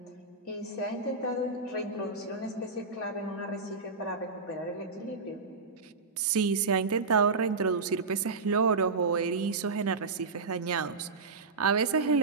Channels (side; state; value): left; quieter; 4.2 dB